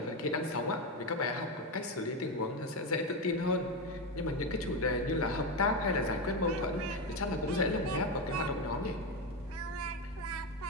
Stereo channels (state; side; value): normal; both; correlation 0.13